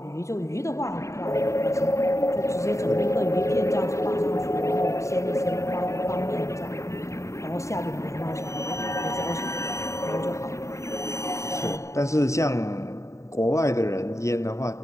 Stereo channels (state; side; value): late; right; 0.14 ms